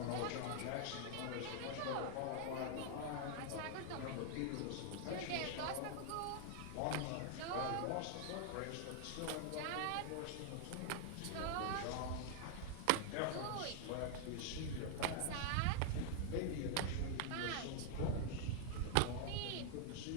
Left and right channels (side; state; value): both; different; correlation 0.00